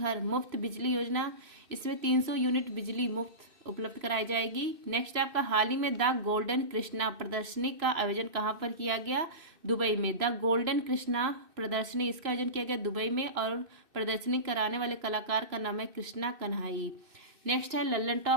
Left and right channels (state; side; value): late; left; 2.6 ms